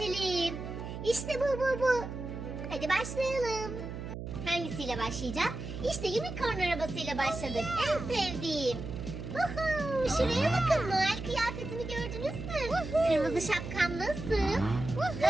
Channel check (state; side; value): noise; right; hum, 8 dB below the sound